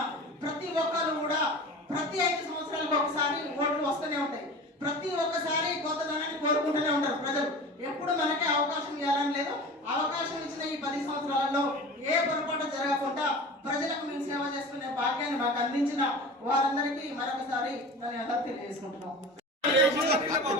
ప్రతి ఒక్కరు కూడా ప్రతి 5 సంవత్సరాలకు ఒకసారి ఓట్లు వస్తూనే ఉంటాయి. ప్రతి ఒక్కసారి కొత్తదనాన్ని కోరుకుంటూనే ఉంటారు ప్రజలు. ఎప్పుడు మనకే అవకాశం ఇవ్వాలని లేదు. అవకాశం ఇచ్చిన ఈ 10 సంవత్సరాలలో ఏ పొరపాటు జరగకుండా ప్రజలకు మేము సేవ చేసుకునే భాగ్యాన్ని మాకు అందించిన వారందరికీ మరొకసారి ధన్యవాదాలు తెలియజేసుకుంటున్నాం.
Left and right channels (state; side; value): normal; both; correlation 0.36